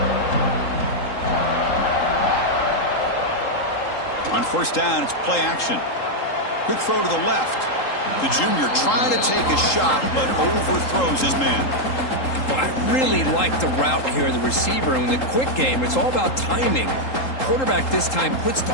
On 1st down, it's play action. Quick throw to the left. The junior trying to take a shot, but overthrows his man. Well, I really like the route here, the receiver. And in the quick game, it's all about timing. Quarterback this time puts the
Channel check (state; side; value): late; right; 3.8 ms